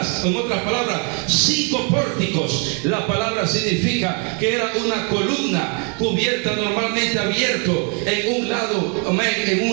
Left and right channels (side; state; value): left; quieter; 38.1 dB